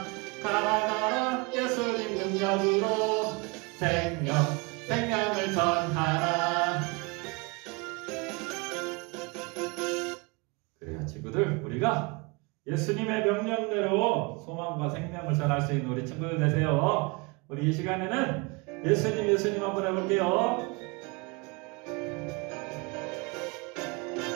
가라가라 예수님 능력으로 생명을 전하라. 그래요 친구들, 우리가 예수님의 명령대로 소망과 생명을 전할 수 있는 우리 친구들 되세요. 우리 이 시간에는 예수님 한번 해볼게요.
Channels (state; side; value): quieter; left; 28.5 dB